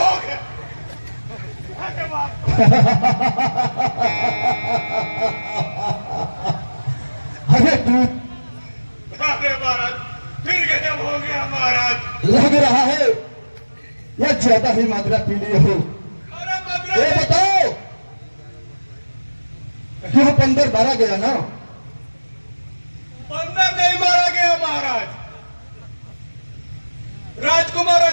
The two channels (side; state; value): both; inverted; correlation -1.00